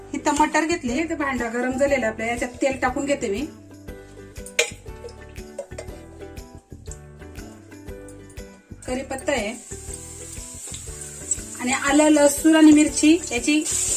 इथं मटर घेतले। इथं भांडा गरम झालेला आपल्या, याच्यात तेल टाकून घेते मी। कढीपत्ता आहे आणि आलं, लसूण आणि मिरची याची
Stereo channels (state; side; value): identical; both; correlation 1.00